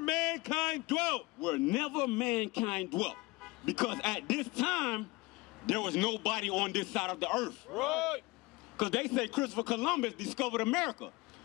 dwelt. Where never mankind dwelt. Because at this time, there was nobody on this side of the earth. Right. Because they say Christopher Columbus discovered America.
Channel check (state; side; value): quieter; right; 22.8 dB